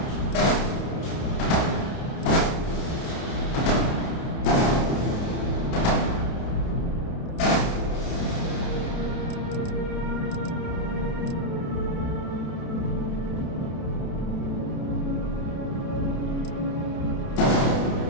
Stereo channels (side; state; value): right; late; 30 ms